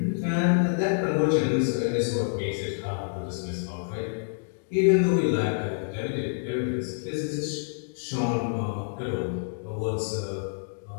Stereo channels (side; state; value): right; silent; digital silence